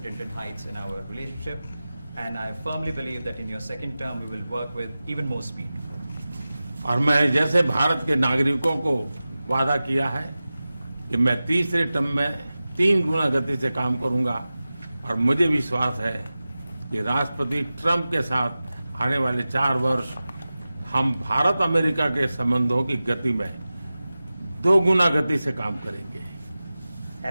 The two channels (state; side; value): inverted; both; correlation -0.96